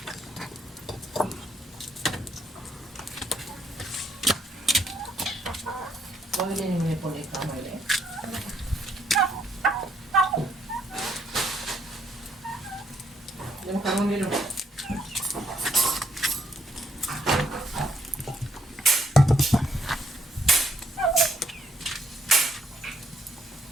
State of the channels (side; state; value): both; normal; correlation 0.71